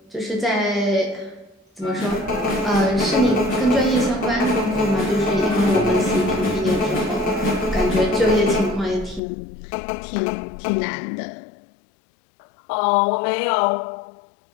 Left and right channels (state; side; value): drops out; right; at 9.2 s